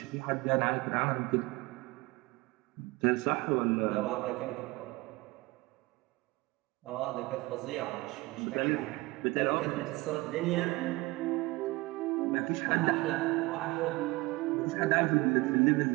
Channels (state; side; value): quieter; left; 21.9 dB